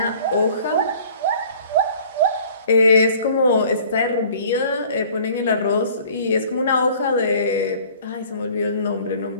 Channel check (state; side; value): inverted; both; correlation -0.51